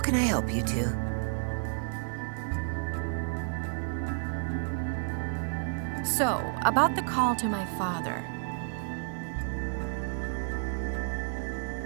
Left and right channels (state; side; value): silent; left; 57 dB below the other